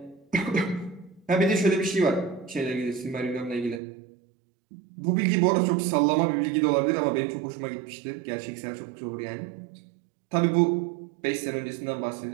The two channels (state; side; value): drops out; left; at 3.8 s